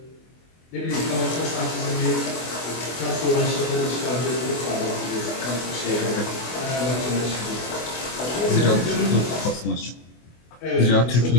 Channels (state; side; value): late; right; 24 ms